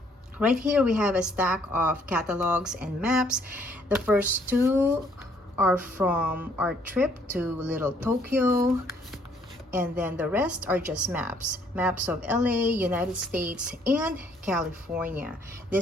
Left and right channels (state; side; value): normal; both; correlation 0.65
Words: Right here we have a stack of catalogs and maps. The first 2 are from our trip to Little Tokyo. And then the rest are just maps. Maps of LA, United States, and California.